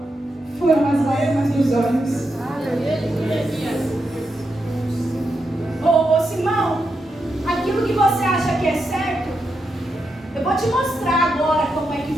foram as lágrimas dos olhos. Ô Simão, aquilo que você acha que é certo, eu vou te mostrar agora como é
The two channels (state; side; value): normal; both; correlation 0.85